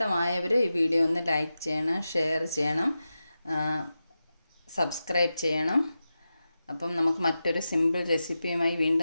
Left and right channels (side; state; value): both; inverted; correlation -0.92